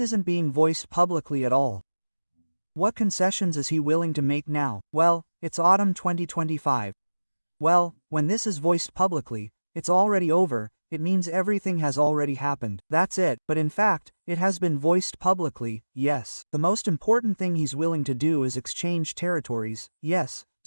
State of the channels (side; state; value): both; inverted; correlation -1.00